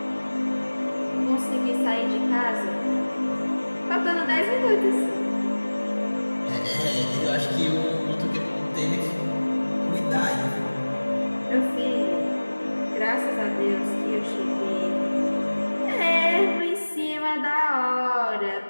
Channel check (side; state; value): both; inverted; correlation -1.00